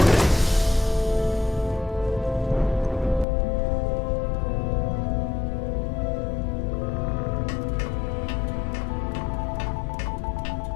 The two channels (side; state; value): right; drops out; at 3.2 s